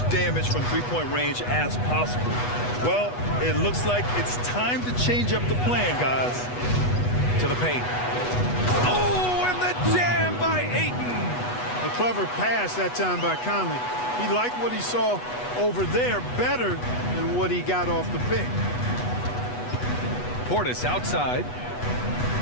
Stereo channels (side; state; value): right; late; 8.2 ms